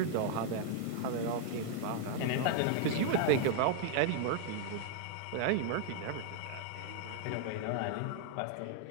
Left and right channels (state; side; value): different; both; correlation -0.01